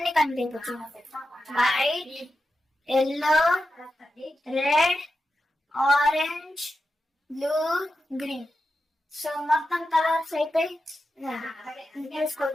కనిపించవచ్చు, white, yellow, red, orange, blue, green. So మొత్తం కలర్స్ అయిపోయి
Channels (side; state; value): both; normal; correlation 0.90